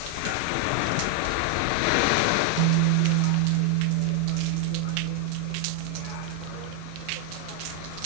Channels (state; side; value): different; both; correlation 0.00